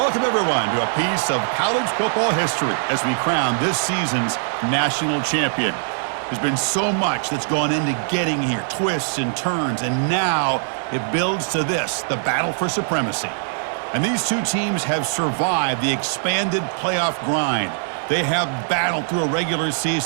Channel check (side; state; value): left; silent; 61 dB below the other